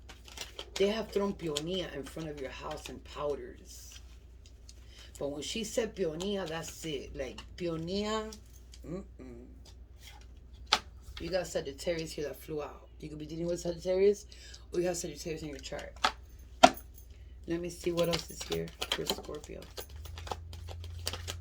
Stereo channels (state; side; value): identical; both; correlation 1.00